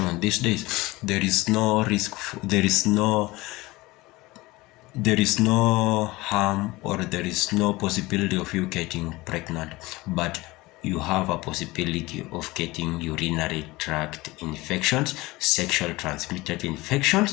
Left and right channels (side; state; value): right; quieter; 20.8 dB